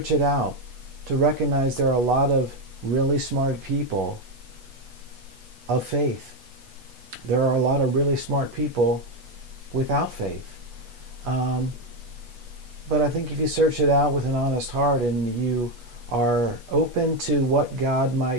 it out, to recognize there are a lot of really smart people of faith. There are a lot of really smart people without faith. But I think if you search it out with an honest heart and you are open to what God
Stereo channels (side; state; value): left; late; 8.2 ms